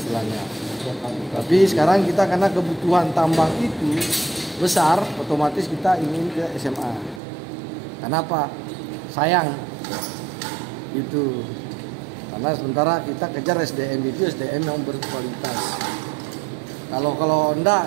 Tapi sekarang kita karena kebutuhan tambang itu besar, otomatis kita ingin ke SMA. Kenapa? Sayang itu. Karena sementara kita kejar SDM itu SDM yang berkualitas. Kalau enggak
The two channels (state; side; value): drops out; left; at 7.2 s